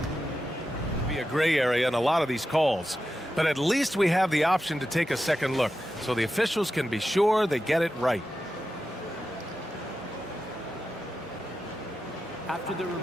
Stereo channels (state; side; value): normal; both; correlation 0.90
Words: Be a gray area in a lot of these calls, but at least we have the option to take a second look, so the officials can be sure they get it right. After the